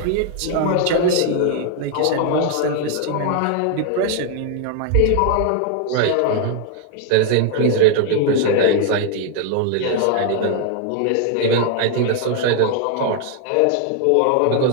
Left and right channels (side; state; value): both; different; correlation 0.00